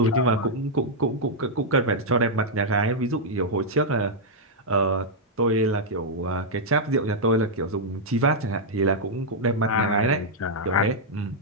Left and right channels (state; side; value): normal; both; correlation -0.05